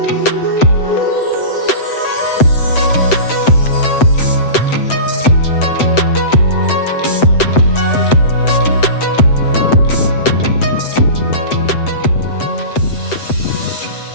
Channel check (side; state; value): right; late; 7.9 ms